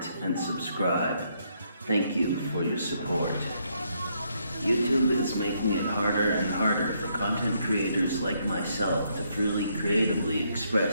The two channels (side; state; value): both; inverted; correlation -0.74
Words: and subscribe. Thank you for your support. YouTube is making it harder and harder for content creators like myself to freely creatively